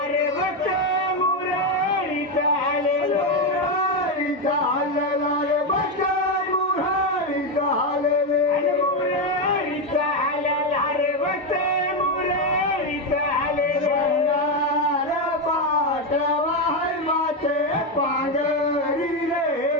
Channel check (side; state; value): both; normal; correlation 0.08